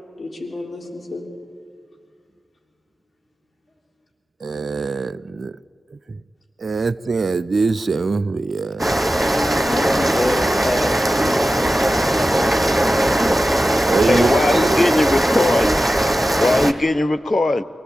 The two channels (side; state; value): both; normal; correlation 0.93